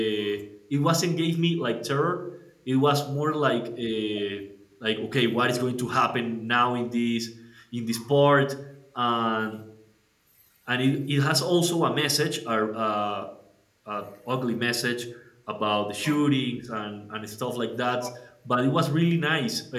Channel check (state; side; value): identical; both; correlation 1.00